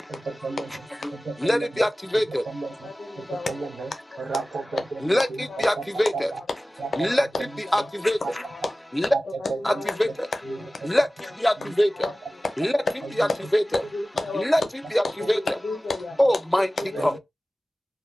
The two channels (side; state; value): both; normal; correlation 0.97